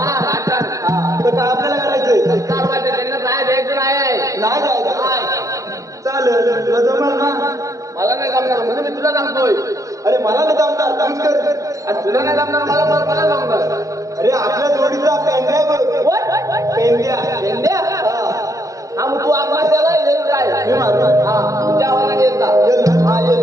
नाटक. हा तर काय आपल्याला करायचंय? चालवायचं त्यांना नाही द्यायचं नाही. नाही जायचं. नाही. चालेल तुला जमणार ना? मला नाही जमणार म्हणजे मी तुला सांगतोय. अरे मला नाही जमणार तूच कर. आणि तुला नाही जमणार मला जमणार. अरे आपल्या जोडीचा पेंड्या बघ. What? पेंड्या. पेंड्या? हा. हा मग तू आपला त्याला येईल काय? मी मारू. हा तुझ्या आवाजाने येत जा. येईल ना? हा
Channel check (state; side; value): late; left; 0.16 ms